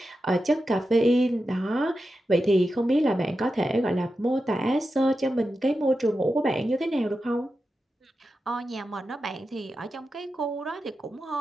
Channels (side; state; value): both; normal; correlation 0.90